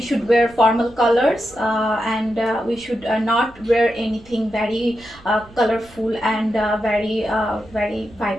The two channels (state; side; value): noise; right; rumble, 24 dB below the sound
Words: wear formal colors, and we should not wear anything very colorful and very